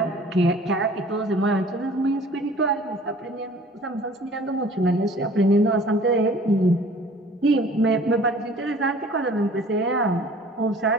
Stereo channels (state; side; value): normal; both; correlation 0.50